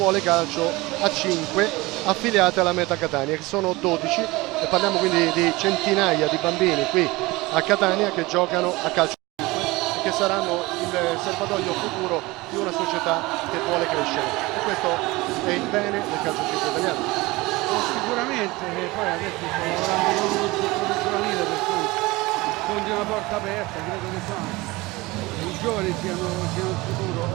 calcio a 5 affiliate alla Meta Catania, che sono 12, e parliamo quindi di centinaia di bambini qui a Catania che giocano a calcio e che saranno il serbatoio futuro di una società che vuole crescere, e questo è il bene del calcio italiano. Sicuramente, poi adesso sto lavorando con uno struttore giovanile, per cui sfondi una porta aperta, credo che i giovani siano il futuro.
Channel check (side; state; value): left; quieter; 21.6 dB